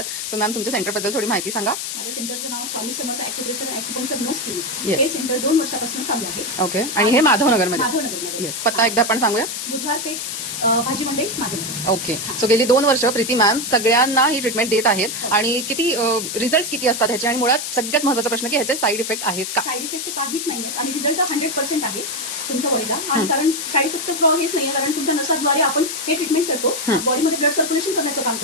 सो मॅम तुमच्या सेंटरबद्दल थोडी माहिती सांगा. माझ्या सेंटरचं नाव Swami Samarth acupressure and acupuncture नस क्लिनिक. Yes. हे सेंटर 2 वर्षापासून चालू आहे. ओके. आणि हे माधवनगरमध्ये. माधवनगरमध्ये. येस. पत्ता एकदा आपण सांगूया. बुधवार पेठ भाजी मंडई माधवनगर. ओके. सो गेली 2 वर्ष प्रीती मॅम सगळ्यांना ही ट्रीटमेंट देत आहेत. आणि किती रिझल्ट किती असतात ह्याचे, आणि मुळात सगळ्यात महत्त्वाचा प्रश्न की ह्याचे साईड इफेक्ट आहेत का? साईड इफेक्ट काहीच नाहीये आणि रिझल्ट 100% आहे तुमच्या बॉडीला. आणि कारण साईड इफेक्ट हेच नाहीये, कारण तुमच्या नसाद्वारे आपण हे ट्रीटमेंट करतो. बॉडीमध्ये ब्लड सर्क्युलेशन करण्याचं काम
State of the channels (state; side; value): noise; left; hiss, 5 dB below the sound